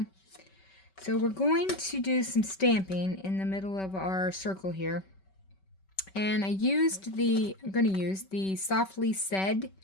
So we're going to do some stamping in the middle of our circle here. And I'm going to use the Softly Said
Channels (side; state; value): right; late; 5.2 ms